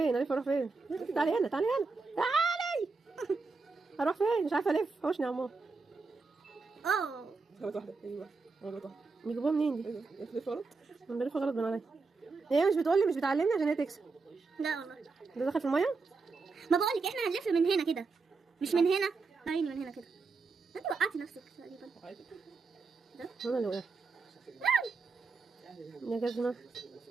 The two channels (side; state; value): left; quieter; 4.3 dB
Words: اروح فين؟ تعالي هنا تعالي هنا تعالي. اروح فين؟ مش عارفه الف. حوشني يا عمار. غلط واحده. ايوه غلط واحده. بيجيبوها منين دي؟ ايوه بتلف غلط. انا بلف غلط بين عليا. هي مش بتقولي مش بتعلمني عشان هي تكسب. لا والله. ده دخل في الميه؟ ما بقولك احنا هنلف من هنا كده مش من هنا. عيني من هنا كده. انت وقعتي نفسك تقريبا. انا اللي وقعت يا جزمه.